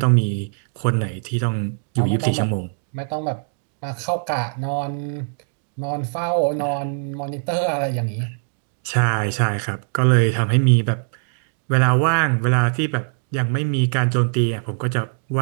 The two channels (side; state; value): left; silent; digital silence